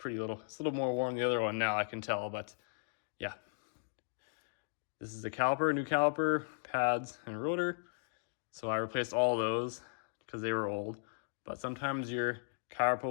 little more warm than the other one now, I can tell, but yeah. This is the caliper, new caliper, pads, and rotor. So I replaced all those because they were old, but sometimes your caliper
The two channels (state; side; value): silent; right; digital silence